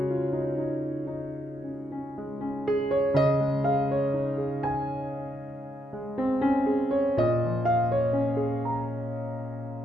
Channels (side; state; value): both; normal; correlation 0.79